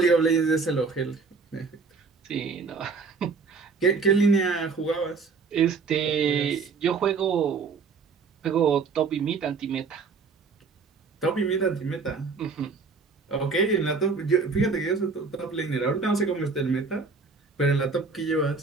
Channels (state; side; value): quieter; left; 4.7 dB